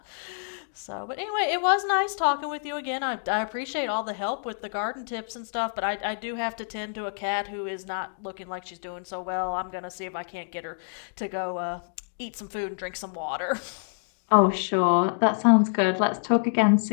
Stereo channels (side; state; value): right; silent; digital silence